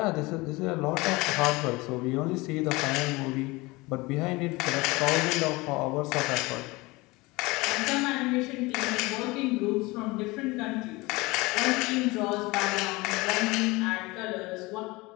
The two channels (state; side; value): quieter; right; 22.8 dB